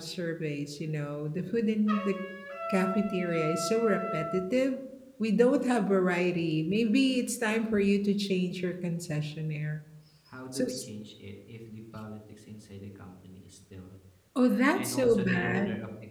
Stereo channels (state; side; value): identical; both; correlation 1.00